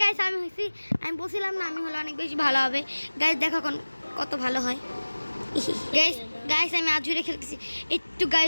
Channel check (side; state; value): both; inverted; correlation -1.00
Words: আমি হয়েছি আমি বলছিলাম না আমি হলে অনেক বেশি ভালো হবে। গাইস দেখো কত ভালো হয়। গাইস আমি আজুরে খেলতেছি একটু।